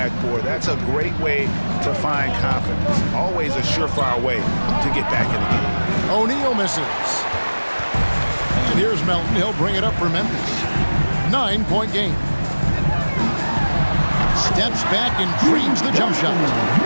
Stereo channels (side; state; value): both; inverted; correlation -1.00